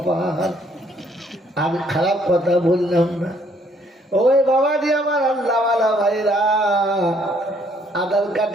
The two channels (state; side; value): normal; both; correlation 0.66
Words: আমি খারাপ কথা বললাম না। ওই বাবাজি আমার আল্লাহওয়ালা ভাইরা, আধার